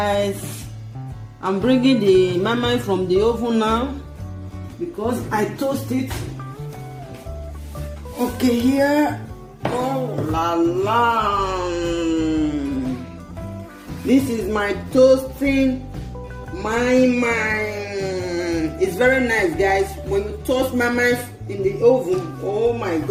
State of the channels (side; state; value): both; identical; correlation 1.00